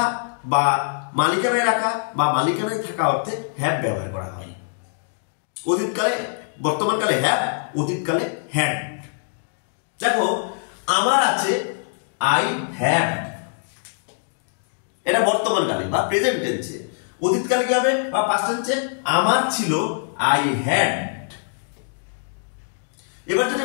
বা মালিকানায় রাখা বা মালিকানায় থাকা অর্থে হ্যাভ ব্যবহার করা হয়। অতীতকালে, বর্তমানকালে হ্যাভ, অতীতকালে হ্যাড। দেখো, আমার আছে আই হ্যাভ, এটা বর্তমানকালে বা প্রেজেন্ট টেন্সে। অতীতকালে কি হবে বা পাস্ট টেন্সে? আমার ছিল আই হ্যাড। এবার যদি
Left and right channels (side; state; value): right; silent; digital silence